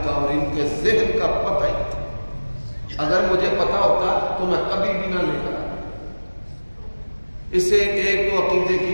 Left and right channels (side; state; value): both; inverted; correlation -1.00